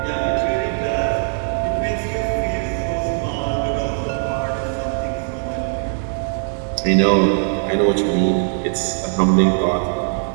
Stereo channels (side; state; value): left; silent; 66 dB below the other